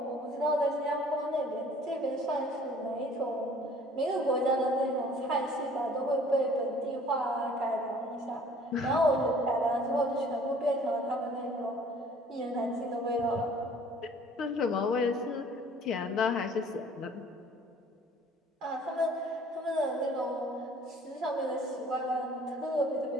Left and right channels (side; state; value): both; normal; correlation 0.53